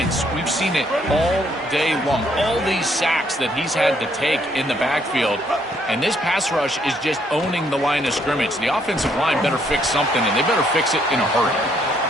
We've seen it all day long. All these sacks that he's had to take in the backfield. And this pass rush is just owning the line of scrimmage. The offensive line better fix something, and they better fix it in a hurry.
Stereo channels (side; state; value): both; normal; correlation 0.70